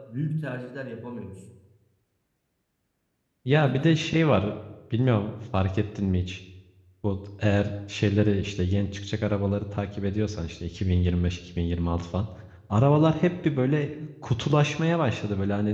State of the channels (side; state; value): both; identical; correlation 1.00